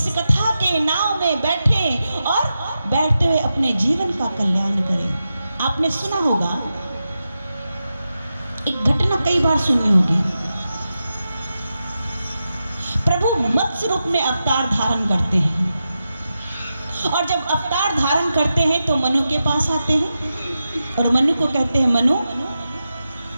कथा के नाव में बैठें और बैठते हुए अपने जीवन का कल्याण करें। आपने सुना होगा, एक घटना कई बार सुनी होगी, प्रभु मत्स्य रूप में अवतार धारण करते हैं और जब अवतार धारण करते हैं तो मनु के पास आते हैं और मनु को कहते हैं, मनु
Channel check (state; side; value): inverted; both; correlation -0.90